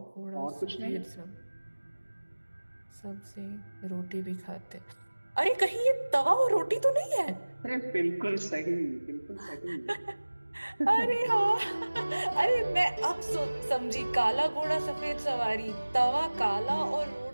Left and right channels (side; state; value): both; inverted; correlation -1.00